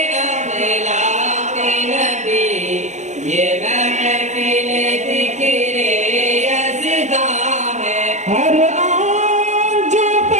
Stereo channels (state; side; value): late; left; 0.34 ms